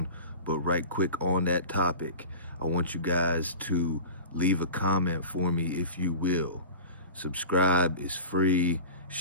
but right quick on that topic, I want you guys to leave a comment for me if you will. Subscribe is free.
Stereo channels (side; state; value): both; inverted; correlation -0.35